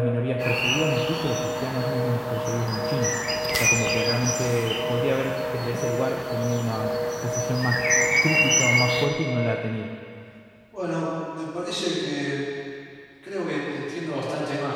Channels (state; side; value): identical; both; correlation 1.00